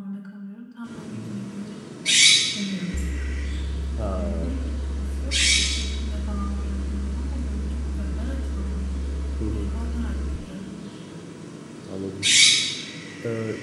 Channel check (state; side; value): identical; both; correlation 1.00